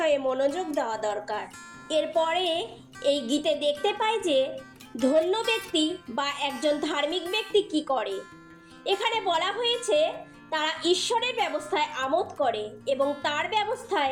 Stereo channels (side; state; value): both; identical; correlation 1.00